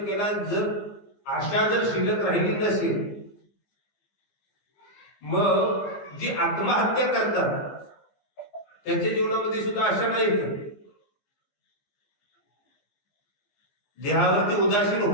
केला, जर आशा जर शिल्लक राहिली नसेल, मग जी आत्महत्या करतात त्यांच्या जीवनामध्ये सुद्धा आशा नाही। देहावरती उदासीन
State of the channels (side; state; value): right; late; 15 ms